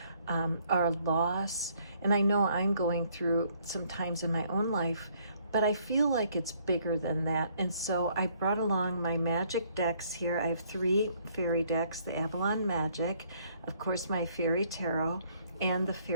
our loss. And I know I'm going through some times in my own life, but I feel like it's bigger than that. And so I brought along my magic decks here. I have 3 fairy decks, the Avalon Magic, of course my Fairy Tarot, and the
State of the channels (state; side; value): inverted; both; correlation -0.66